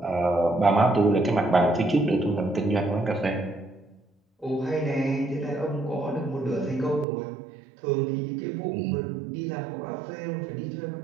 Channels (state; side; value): drops out; left; at 7.1 s